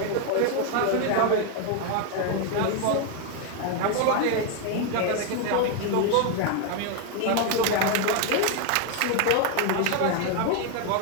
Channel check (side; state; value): both; different; correlation 0.01